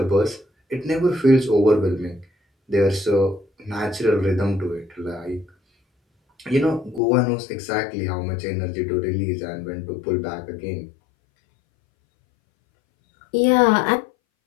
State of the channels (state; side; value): drops out; right; at 7.0 s